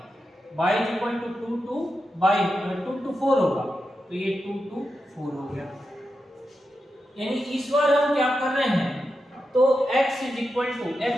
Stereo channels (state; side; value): normal; both; correlation 0.89